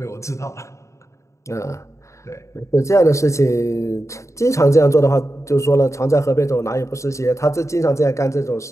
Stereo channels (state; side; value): late; right; 0.14 ms